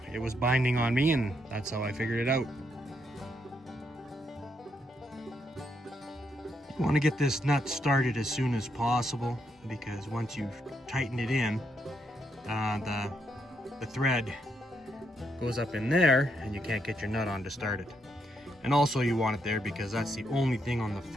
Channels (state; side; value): normal; both; correlation 0.78